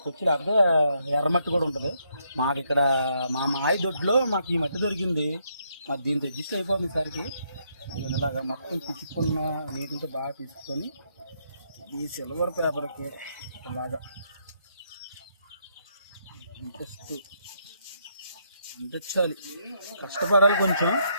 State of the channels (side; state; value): both; inverted; correlation -0.75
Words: లేకపోతే ఎర్రమట్టి కూడా ఉంటుంది. మాకు ఇక్కడ మా మాయ దొడ్లో మాకు ఈ మట్టి దొరికింది. మాకు దీంతో అడ్జస్ట్ అయిపోతుంది సరికి. ఇలాగా మొత్తం పిచ్చుకున్న నీటితో బాగా తీసుకొని ఈ సిల్వర్ పేపర్కి ఇలాగా అంటించాలి. కష్టపడాలి కొంచెం.